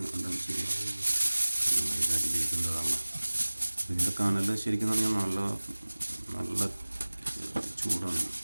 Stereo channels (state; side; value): inverted; both; correlation -1.00